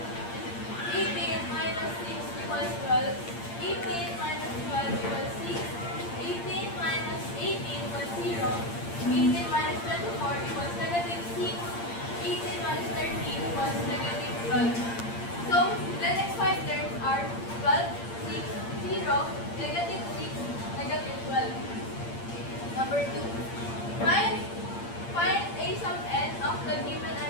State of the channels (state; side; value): late; right; 8.7 ms